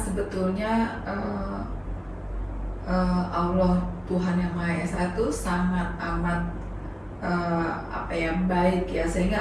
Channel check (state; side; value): identical; both; correlation 1.00